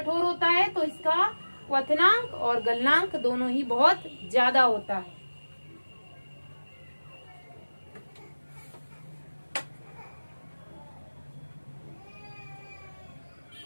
होता है तो इसका क्वथनांक और गलनांक दोनों ही बहुत ज्यादा होता है।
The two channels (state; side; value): inverted; both; correlation -1.00